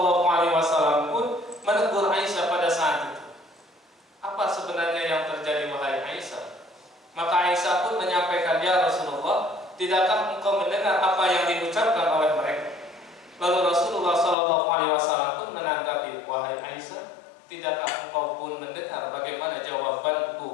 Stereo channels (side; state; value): right; drops out; at 14.4 s